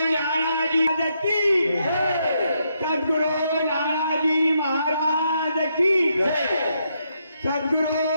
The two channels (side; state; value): both; inverted; correlation -0.78